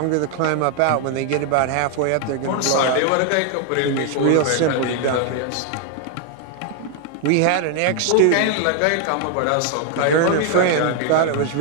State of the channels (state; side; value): different; both; correlation 0.00